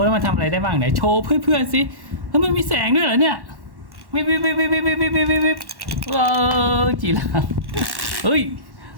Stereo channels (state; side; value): late; left; 1.1 ms